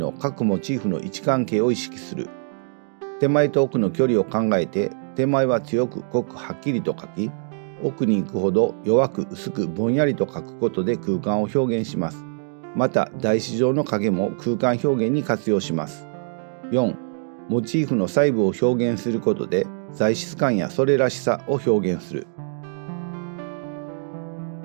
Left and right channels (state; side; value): silent; left; digital silence